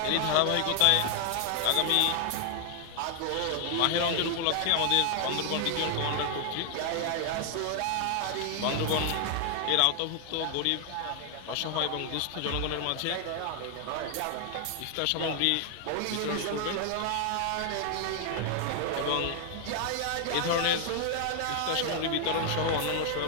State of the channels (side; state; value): both; different; correlation 0.00